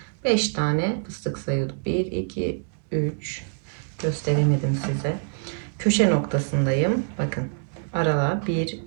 5 tane fıstık sayıyorduk. 1, 2, 3. Gösteremedim size. Köşe noktasındayım. Bakın. Aralar 1,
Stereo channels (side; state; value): left; silent; 62 dB below the other